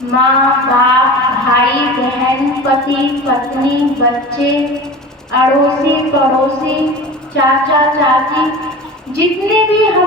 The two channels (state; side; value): normal; both; correlation 0.35